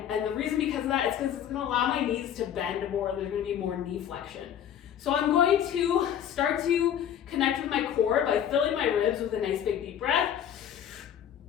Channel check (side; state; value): right; quieter; 9.6 dB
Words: the reason because of that is because it's going to allow my knees to bend more. There's going to be more knee flexion. So I'm going to start to connect with my core by filling my ribs with a nice big deep breath,